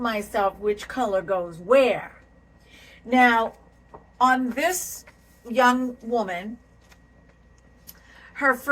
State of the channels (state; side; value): identical; both; correlation 1.00